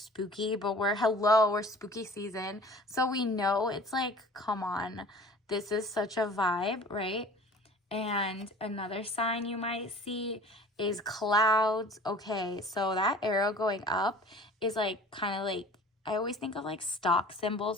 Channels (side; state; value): both; normal; correlation 0.45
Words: but we're spooky season. So we know it's like, come on. This is such a vibe, right? And another sign you might see is clouds. Okay, so that arrow going up is like kind of like, I always think of like stock